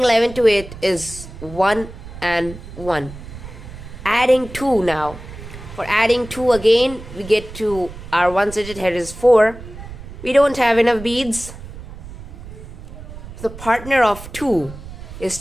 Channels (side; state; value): right; noise; rumble, 13 dB below the sound